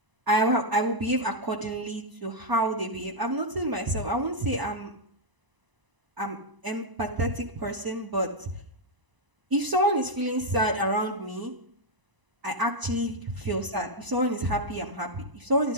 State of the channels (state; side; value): late; left; 1.0 ms